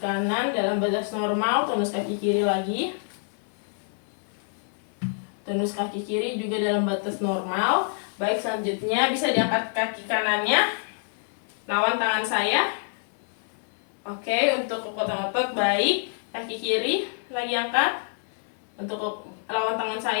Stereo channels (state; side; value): silent; right; 59 dB below the other